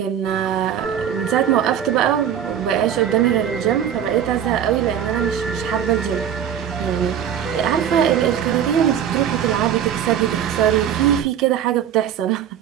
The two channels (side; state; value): left; quieter; 9.3 dB